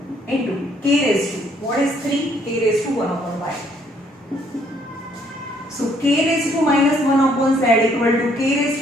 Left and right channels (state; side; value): normal; both; correlation 0.66